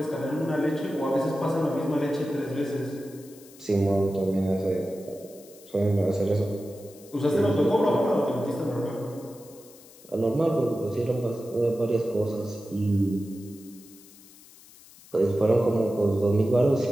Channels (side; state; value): left; noise; hiss, 23 dB below the sound